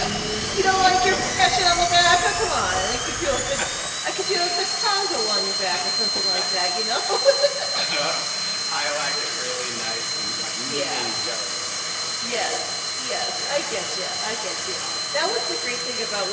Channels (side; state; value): both; identical; correlation 1.00